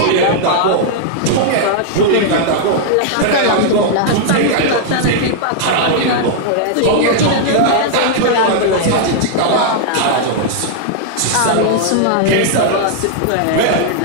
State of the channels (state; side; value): different; both; correlation -0.01